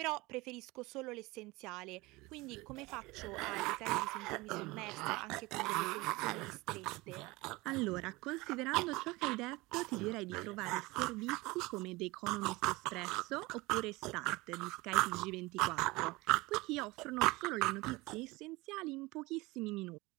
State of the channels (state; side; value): quieter; left; 22.2 dB